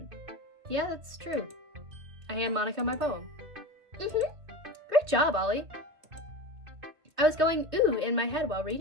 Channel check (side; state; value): left; late; 2.3 ms